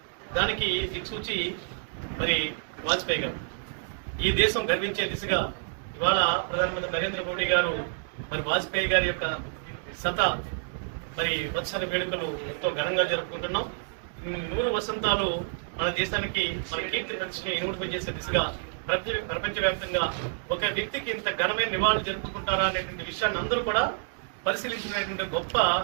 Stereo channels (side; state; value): left; silent; digital silence